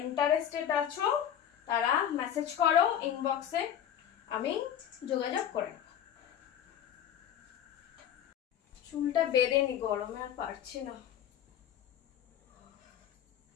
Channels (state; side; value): quieter; right; 9.8 dB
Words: ইন্টারেস্টেড আছো তারা মেসেজ করো ইনবক্সে, আমি যোগাযোগ করে। চুলটা বেঁধে নি, গরমে আর পারছি না।